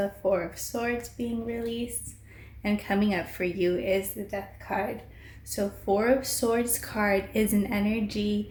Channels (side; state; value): both; identical; correlation 1.00